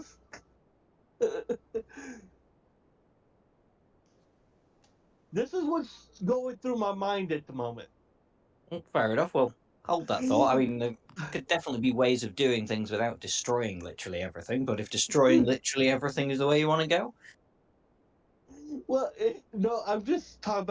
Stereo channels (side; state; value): both; identical; correlation 1.00